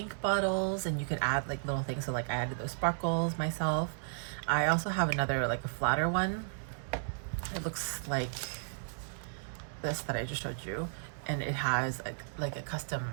bottles, and you could add like little things. So like I added those sparkles myself. I also have another like a flatter one. It looks like this that I just showed you, and it has like a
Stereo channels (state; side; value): silent; left; digital silence